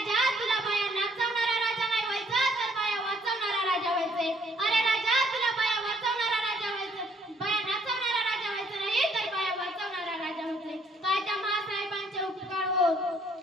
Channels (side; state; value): both; normal; correlation 0.65